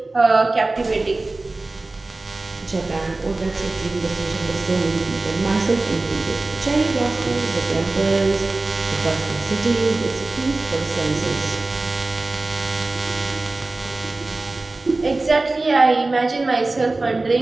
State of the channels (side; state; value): left; quieter; 3.2 dB